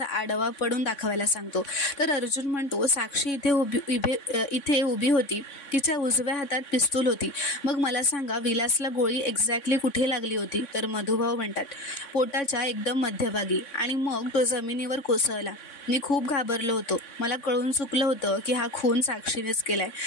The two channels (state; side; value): late; right; 3.6 ms